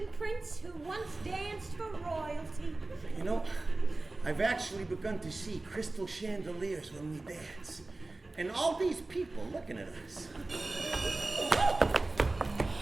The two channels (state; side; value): quieter; left; 3.1 dB